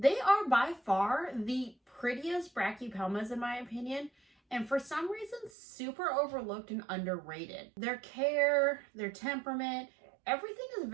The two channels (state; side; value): drops out; left; at 5.5 s